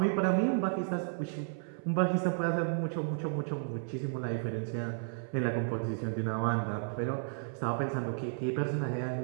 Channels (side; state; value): left; silent; 56 dB below the other